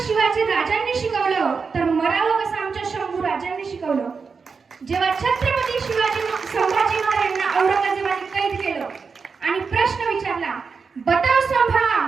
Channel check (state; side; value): quieter; left; 5.2 dB